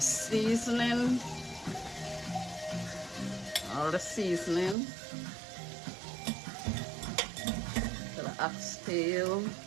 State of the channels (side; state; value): left; drops out; at 4.8 s